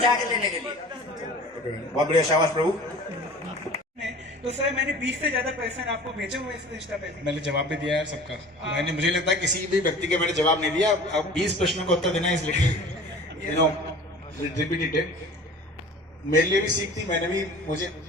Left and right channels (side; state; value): both; normal; correlation 0.42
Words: लेने के लिए। बहुत बढ़िया, शाबाश प्रभु। तो सर मैंने 20 से ज्यादा पर्सन आपको भेजे हुए इस इंस्टा पे। मैंने जवाब भी दिया है सबका। मैंने, मुझे लगता है किसी भी व्यक्ति के मैंने जवाब नहीं दिया। अब 20 प्रश्नों का उत्तर देना है, इसलिए रिपीटेड। मेरे लिए भी सीख थी, मैंने भी, मुझे